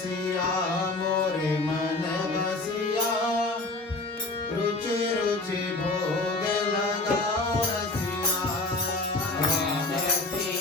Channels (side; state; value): right; quieter; 3.0 dB